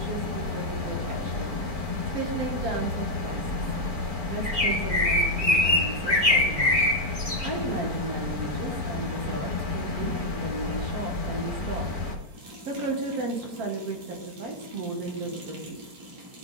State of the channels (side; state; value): left; late; 4.4 ms